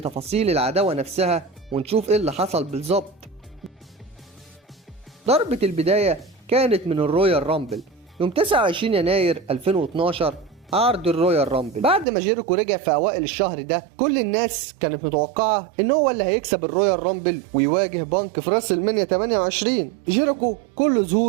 العداوة نفسها ونشوف إيه اللي حصل بالظبط. ضربة البداية كانت من الرويال رامبل يوم 29 يناير 2012، عرض الرويال رامبل. بعد ما جيريكو رجع في اوائل الشهر ده، كل الناس كانت متوقعة ان هو اللي هيكسب الرويال رامبل ويواجه بانك في راس المنيا 28. جيريكو كل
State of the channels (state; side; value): drops out; left; at 12.1 s